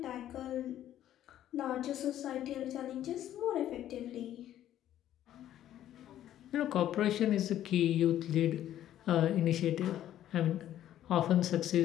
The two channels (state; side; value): quieter; right; 12.0 dB